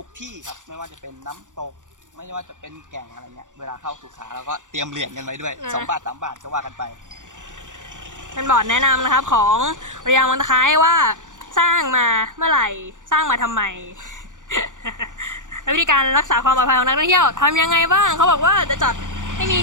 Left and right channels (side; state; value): left; late; 0.86 ms